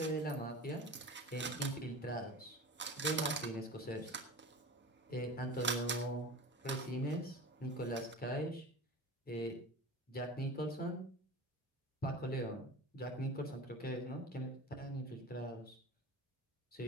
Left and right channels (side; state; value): both; normal; correlation 0.34